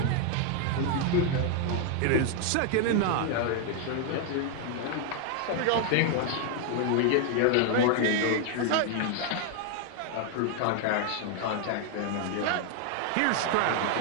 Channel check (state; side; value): different; both; correlation 0.00